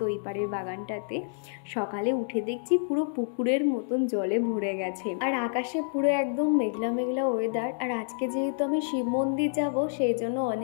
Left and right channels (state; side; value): silent; right; 59 dB below the other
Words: ওই পাড়ের বাগানটাতে। সকালে উঠে দেখছি পুরো পুকুরের মতন জলে ভরে গেছে, আর আকাশে পুরো একদম মেঘলা মেঘলা ওয়েদার। আর আজকে যেহেতু আমি শিব মন্দির যাব, সেই জন্য